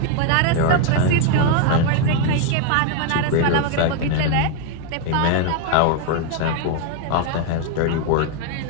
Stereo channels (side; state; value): both; different; correlation 0.01